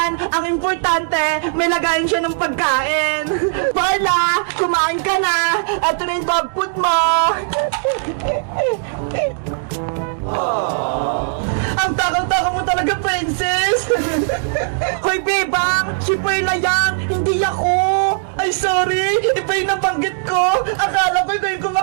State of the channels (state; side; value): silent; left; digital silence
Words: Ang importante, may lagayin siya ng pagkain. Perla, kumain ka na. Ito na yung dog food mo. Ang takaw-takaw mo talaga, Princess. Hoy, bebang, si Perla yan, hindi ako. Ay, sorry, iba yung nabanggit ko. Akala ko ikaw yung